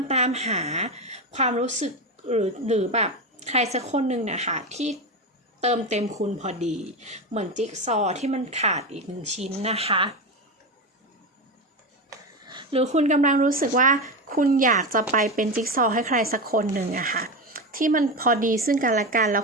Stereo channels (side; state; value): both; normal; correlation 0.17